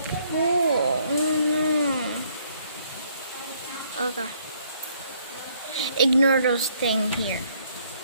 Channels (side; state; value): both; inverted; correlation -0.67